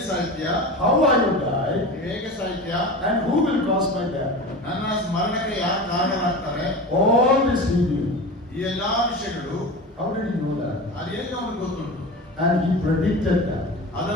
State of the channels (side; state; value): both; normal; correlation 0.30